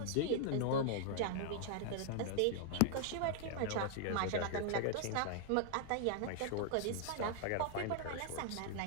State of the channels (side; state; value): both; different; correlation 0.00